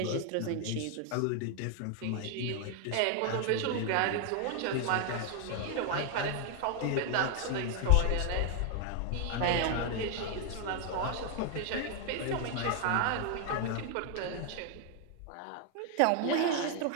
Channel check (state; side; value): different; both; correlation 0.00